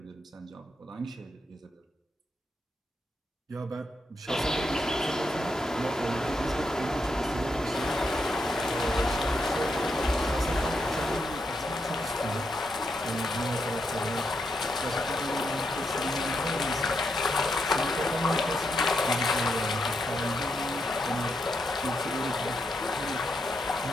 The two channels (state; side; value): normal; both; correlation 0.82